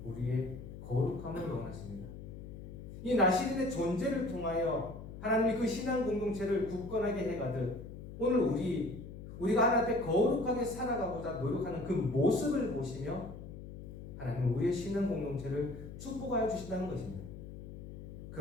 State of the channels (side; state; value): left; noise; hum, 12 dB below the sound